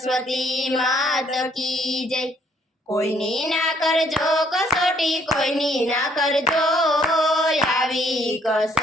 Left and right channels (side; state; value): both; normal; correlation 0.66